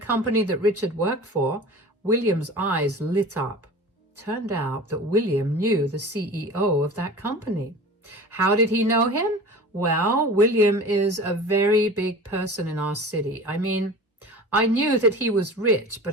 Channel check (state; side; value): normal; both; correlation 0.38